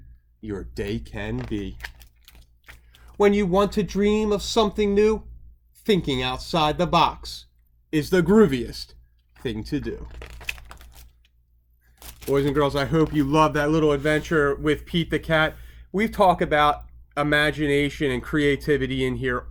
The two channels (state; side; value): identical; both; correlation 1.00